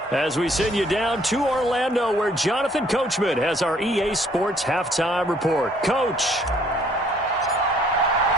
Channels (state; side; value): normal; both; correlation 0.62